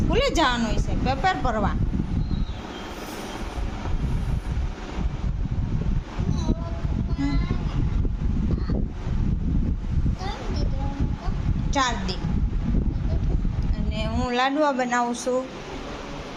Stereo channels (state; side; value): identical; both; correlation 1.00